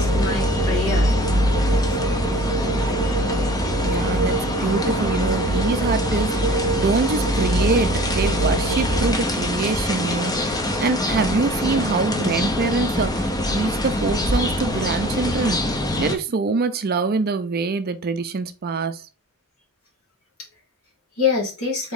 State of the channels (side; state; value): both; normal; correlation 0.44